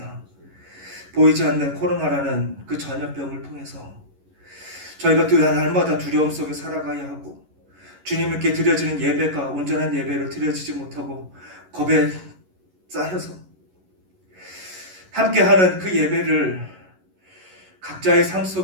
보이지 않는 코로나라는 그 전염병을 통해서 저희가 날마다 두려움 속에 살아가야 하고, 주님께 드려지는 예배가 온전한 예배로 드려지지 못하고 겁에 쌓여서 함께하는 그 예배를 각자의 삶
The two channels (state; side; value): late; left; 11 ms